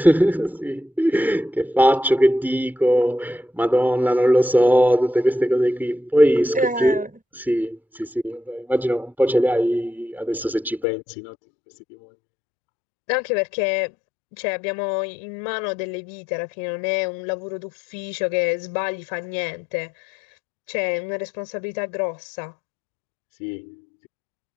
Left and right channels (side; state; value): right; drops out; at 10.9 s